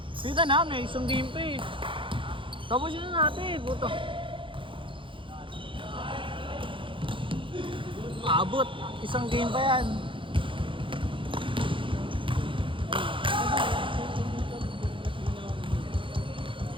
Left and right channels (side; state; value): left; late; 0.25 ms